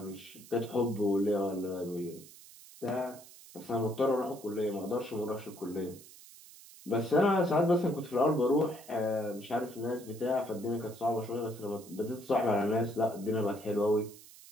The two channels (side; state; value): right; noise; hiss, 19 dB below the sound